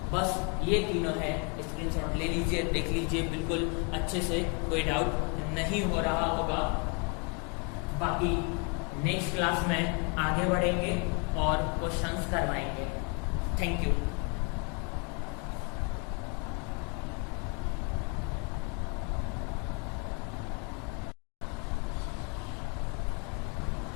बस ये तीनों है, स्क्रीनशॉट ले लीजिए, देख लीजिए बिल्कुल अच्छे से, कोई डाउट नहीं हो रहा होगा। बाकी नेक्स्ट क्लास में आगे बढ़ेंगे और क्वेश्चंस करवाएंगे। Thank you.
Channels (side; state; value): right; quieter; 34.3 dB